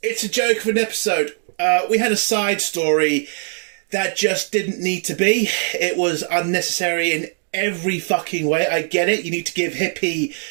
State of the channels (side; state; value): left; silent; 59 dB below the other